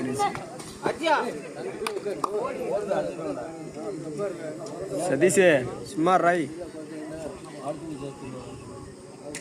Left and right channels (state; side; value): identical; both; correlation 1.00